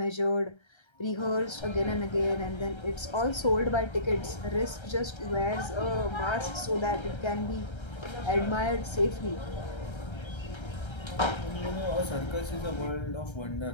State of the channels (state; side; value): late; right; 1.3 ms